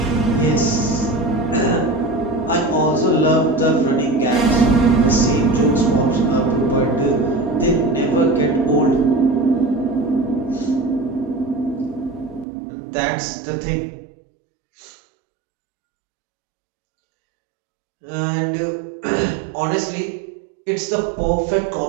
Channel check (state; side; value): drops out; left; at 12.5 s